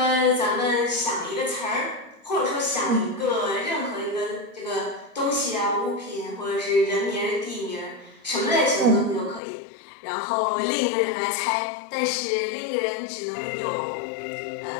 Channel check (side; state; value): right; drops out; at 9.4 s